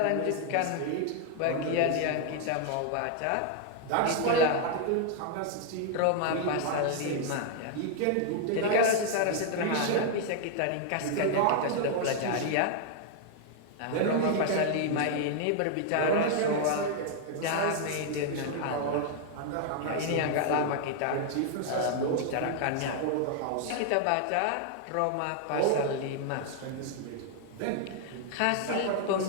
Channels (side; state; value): both; different; correlation 0.00